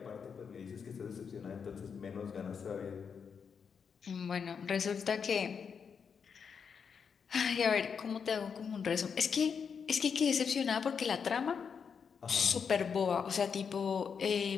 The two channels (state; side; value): quieter; right; 6.4 dB